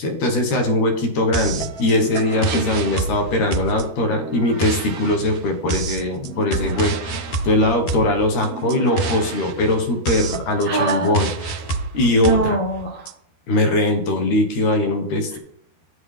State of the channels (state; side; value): late; right; 13 ms